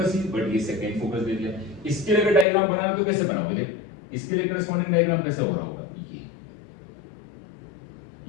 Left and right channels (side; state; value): right; drops out; at 2.5 s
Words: ही, बट ये सेकंड फोकस दे दिया। इसके लिए अगर डायग्राम बनाना तो कैसे बनाओगे, देख इसके लिए करस्पॉन्डिंग डायग्राम कैसे हो रहा होगा, ये